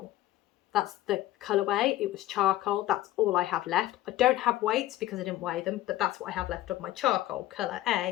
That's the colourway, it was charcoal, that's all I have left. I don't have weights because I didn't weigh them, but that's what I have left of my charcoal, colour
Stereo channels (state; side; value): quieter; right; 15.2 dB